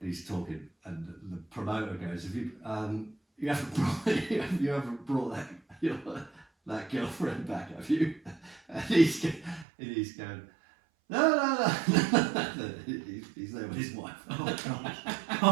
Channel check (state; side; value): drops out; left; at 9.7 s